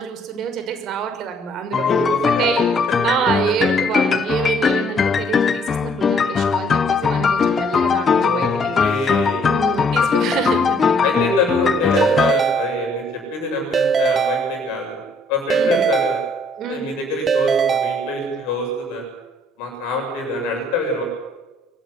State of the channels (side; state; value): both; normal; correlation 0.64